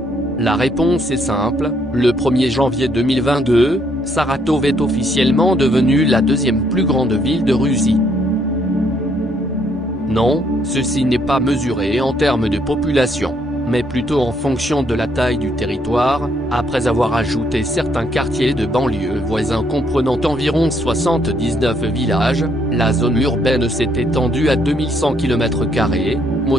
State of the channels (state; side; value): normal; both; correlation 0.70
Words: La réponse est simple, le 1er janvier 2022, Saratov est officiellement devenue la 2e plus grande ville de Russie. Non, ceci n'est pas mesuré en termes de population, mais plutôt en fonction de la taille du territoire, après avoir ajouté certains quartiers de banlieue voisins comprenant environ 79 villages, la zone urbaine s'est étendue à 2100 km²,